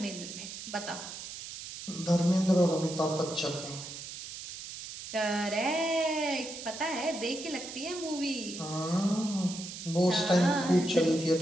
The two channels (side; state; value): right; noise; hiss, 10 dB below the sound